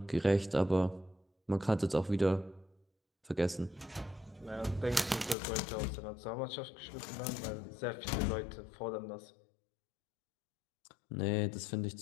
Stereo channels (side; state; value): right; drops out; at 5.4 s